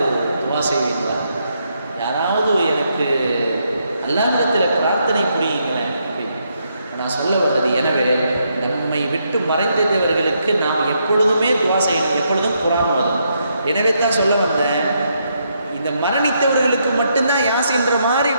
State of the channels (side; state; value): both; inverted; correlation -0.77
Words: துவா செய்வீங்களா? யாராவது எனக்கு அல்லாஹ்விடத்தில் பிரார்த்தனை புரியுங்களேன் அப்படின்னு நான் சொல்ல வர்றது. எனவே நம்மை விட்டு மறைந்தவர்களுக்கு நாம் எப்பொழுதுமே துவா செய்யணும், எப்பொழுதும் குர்ஆன் ஓதணும். எனவே தான் சொல்ல வந்தேன், இந்த மரணித்தவர்களுக்கு மட்டும்தான் யாசின்ற மாதிரி